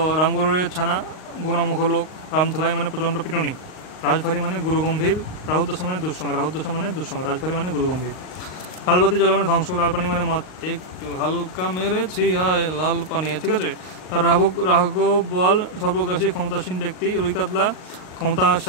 রামগরুরের ছানা, গুণামুখ লোক। রামধুলাই মানে প্রচণ্ড পিটুনি। রাজভারী মানে গুরুগম্ভীর। রাহুদশা মানে দুঃসঙ্গ, রাহুদশা মানে দুঃসঙ্গ। রাজভারী মানে গুরুগম্ভীর। লালবাতি জ্বলা মানে ধ্বংস, লাল পানি মানে মদ। একটু হালকা মেরেছি আয় লাল পানি, ঠিক আছে। আর রাঘব বল সর্বগ্রাসী ক্ষমতাসীন ব্যক্তি। রুই কাতলা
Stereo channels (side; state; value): right; late; 38 ms